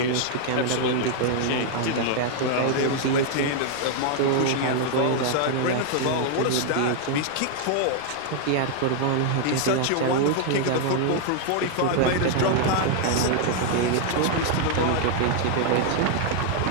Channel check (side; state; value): both; different; correlation 0.00